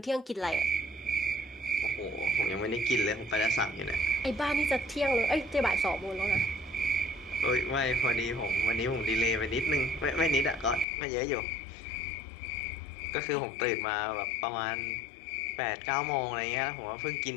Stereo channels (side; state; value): right; drops out; at 10.9 s